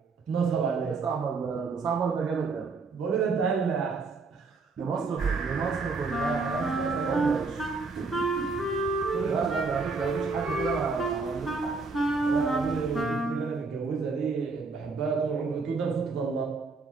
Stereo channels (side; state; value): left; quieter; 4.2 dB